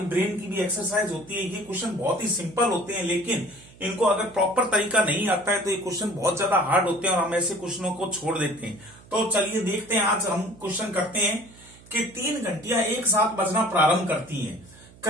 ब्रेन की भी एक्सरसाइज होती है। ये क्वेश्चन बहुत ही सिंपल होते हैं, लेकिन इनको अगर प्रॉपर तरीका नहीं आता है तो ये क्वेश्चन बहुत ज्यादा हार्ड होते हैं और हम ऐसे क्वेश्चनों को छोड़ देते हैं। तो चलिए देखते हैं, आज हम क्वेश्चन करते हैं कि 3 घंटियां एक साथ बजना प्रारंभ करती हैं,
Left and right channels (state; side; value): noise; right; hum, 23 dB below the sound